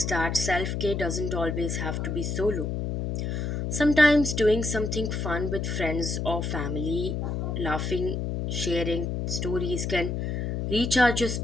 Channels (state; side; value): noise; left; hum, 2 dB below the sound